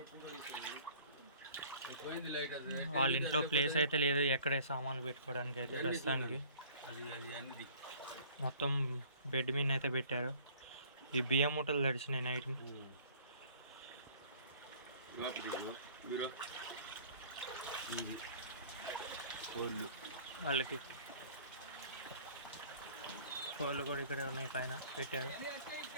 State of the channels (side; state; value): both; inverted; correlation -0.52